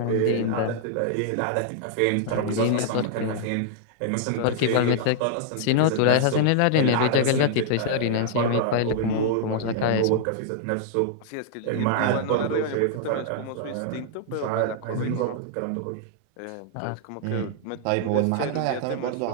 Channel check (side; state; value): both; different; correlation -0.01